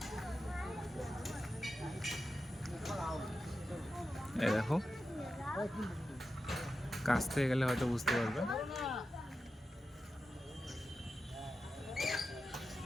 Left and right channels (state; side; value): normal; both; correlation 0.91